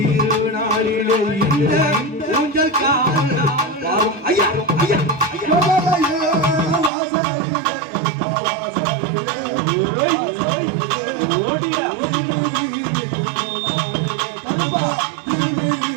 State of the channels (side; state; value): left; drops out; at 6.9 s